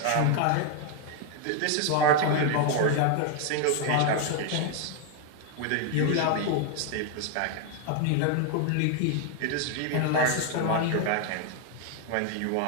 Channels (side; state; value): both; different; correlation 0.01